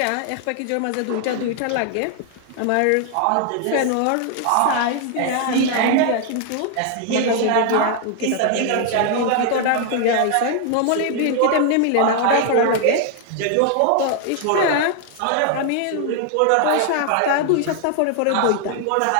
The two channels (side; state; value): both; different; correlation 0.00